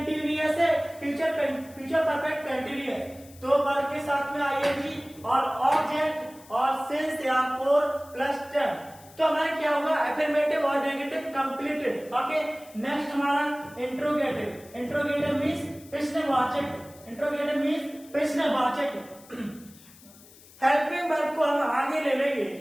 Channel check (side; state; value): left; noise; hiss, 23 dB below the sound